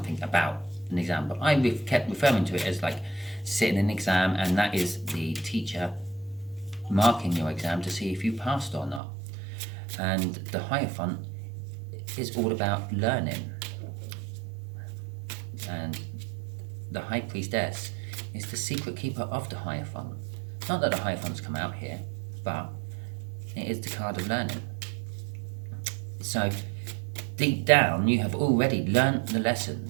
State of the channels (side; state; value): left; drops out; at 9.0 s